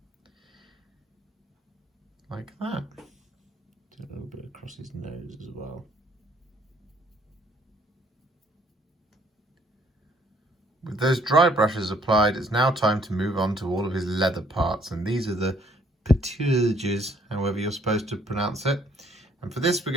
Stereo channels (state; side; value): normal; both; correlation 0.63